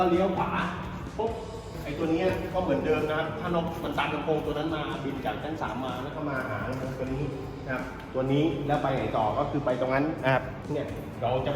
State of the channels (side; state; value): both; identical; correlation 1.00